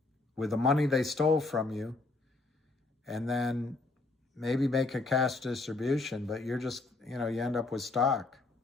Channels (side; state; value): right; quieter; 3.4 dB